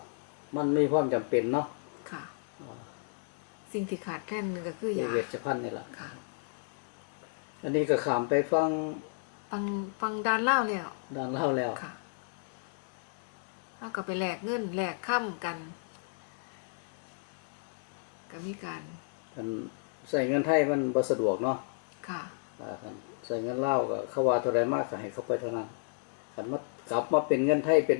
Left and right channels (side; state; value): right; silent; digital silence